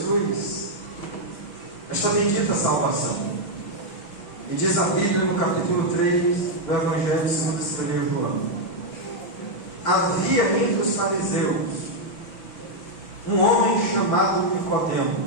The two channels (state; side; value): late; right; 6.1 ms